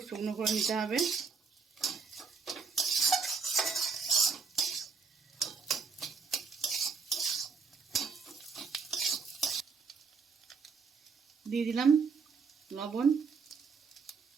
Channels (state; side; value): quieter; left; 5.2 dB